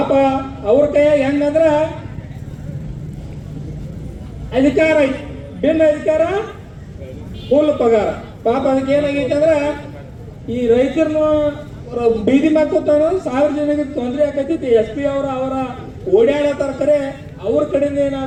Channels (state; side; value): identical; both; correlation 1.00